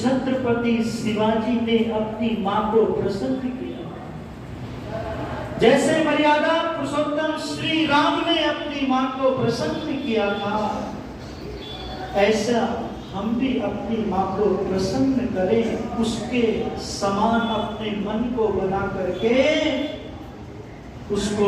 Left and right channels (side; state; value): both; identical; correlation 1.00